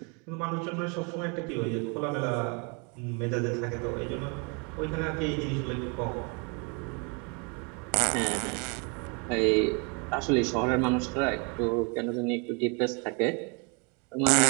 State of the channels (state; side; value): quieter; left; 33.3 dB